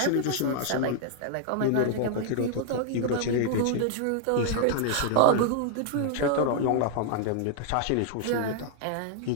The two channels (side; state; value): both; different; correlation -0.01